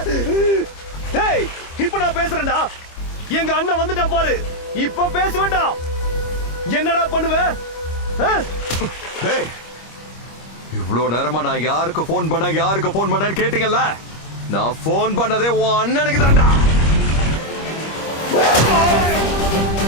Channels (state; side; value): late; right; 25 ms